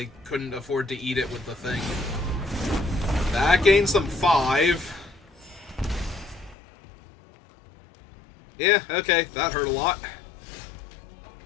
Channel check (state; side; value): drops out; right; at 6.6 s